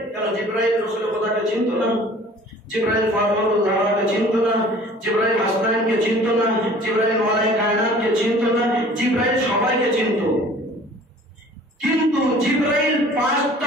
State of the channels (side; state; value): both; normal; correlation 0.49